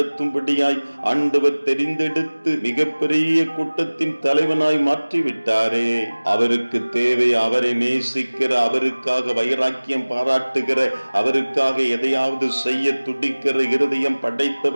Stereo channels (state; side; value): inverted; both; correlation -1.00